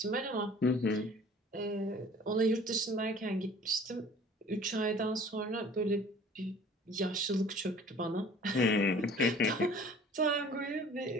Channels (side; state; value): both; normal; correlation 0.49